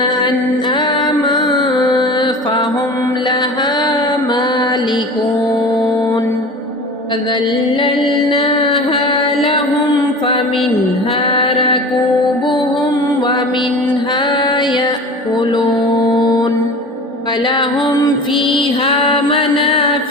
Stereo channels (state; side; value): normal; both; correlation 0.36